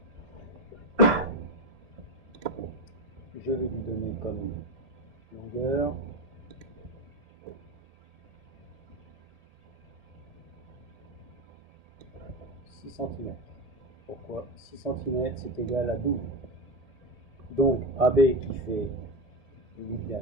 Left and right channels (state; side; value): late; left; 1.8 ms